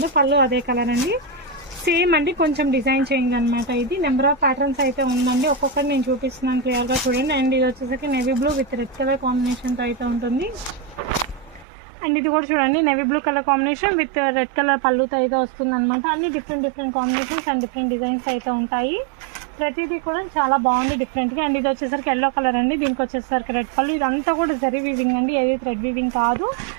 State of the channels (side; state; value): left; drops out; at 11.7 s